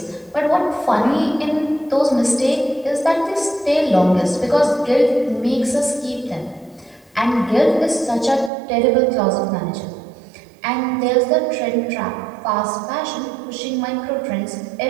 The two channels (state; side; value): drops out; left; at 8.5 s